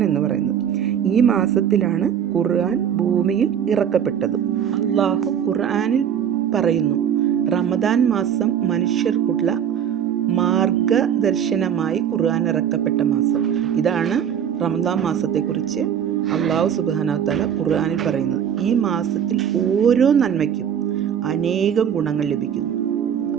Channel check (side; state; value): left; quieter; 8.8 dB